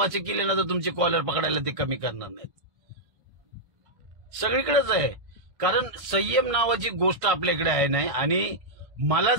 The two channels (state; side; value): late; left; 1.5 ms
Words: केली ना तर तुमची कॉलर पकडायला ते कमी करणार नाहीत. सगळीकडेच आहे. कारण संयम नावाची गोष्ट आपल्याकडे आहे नाही. आणि मला